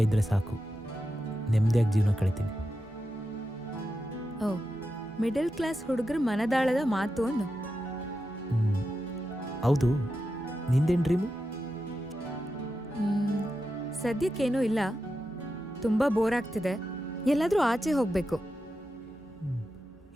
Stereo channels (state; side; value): normal; both; correlation 0.89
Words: ಇದ್ದರೆ ಸಾಕು. ನೆಮ್ಮದಿಯಾಗಿ ಜೀವನ ಕಳಿತೀನಿ. ಓ, ಮಿಡಲ್ ಕ್ಲಾಸ್ ಹುಡುಗರ ಮನದಾಳದ ಮಾತು ಅನ್ನು. ಹೌದು, ನಿಂದೇನು ಡ್ರೀಮು? ಸದ್ಯಕ್ಕೇನೂ ಇಲ್ಲ, ತುಂಬ ಬೋರ್ ಆಗ್ತಿದೆ, ಎಲ್ಲಾದರೂ ಆಚೆ ಹೋಗಬೇಕು.